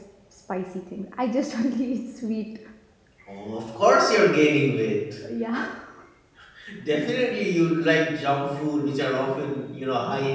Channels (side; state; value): both; identical; correlation 1.00